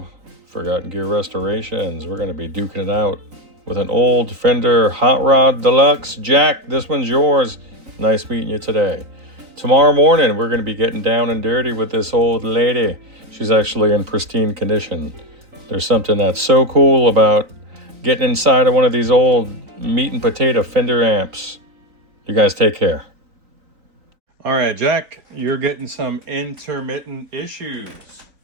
Forgotten Gear Restorations. We're going to be duking it out with an old Fender Hotrod Deluxe. Jack, this one's yours. Nice meeting you today. Tomorrow morning, we're going to be getting down and dirty with this old lady. She's actually in pristine condition. There's something that's so cool about getting inside of one of these old meat and potato Fender amps. You guys take care. All right, Jack, you're getting some intermittent issues.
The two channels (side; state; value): left; late; 3.9 ms